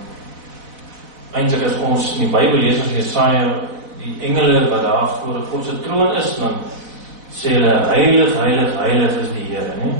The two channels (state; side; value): late; left; 4.0 ms